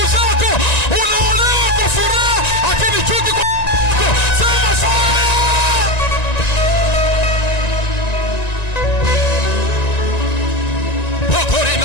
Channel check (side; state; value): right; late; 1.9 ms